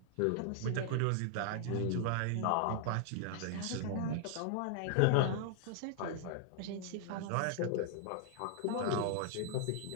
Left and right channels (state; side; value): different; both; correlation 0.00